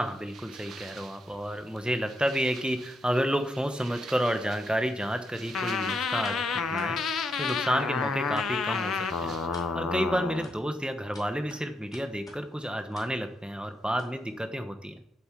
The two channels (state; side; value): normal; both; correlation 0.80